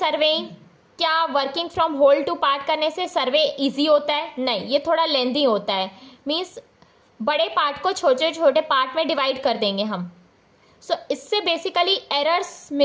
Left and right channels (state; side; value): identical; both; correlation 1.00